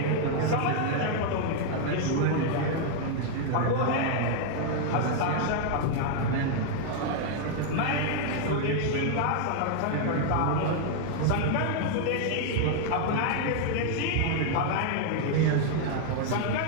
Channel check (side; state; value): both; different; correlation 0.00